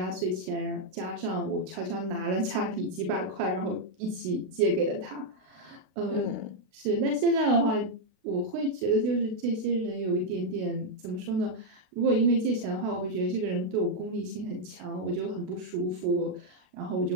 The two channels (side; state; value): left; late; 32 ms